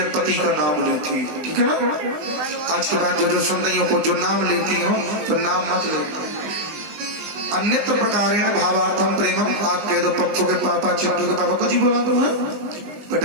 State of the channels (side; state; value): left; late; 20 ms